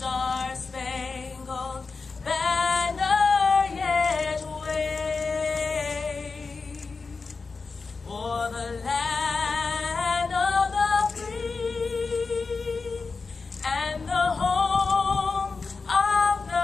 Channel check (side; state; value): right; quieter; 4.4 dB